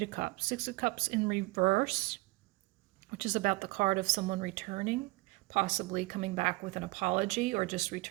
of Cups. 6 of Cups in reverse, which is about the card of someone returning, possibly coming back with an apology or just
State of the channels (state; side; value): quieter; left; 22.8 dB